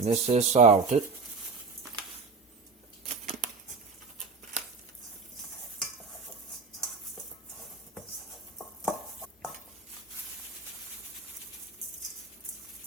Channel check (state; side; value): quieter; left; 4.6 dB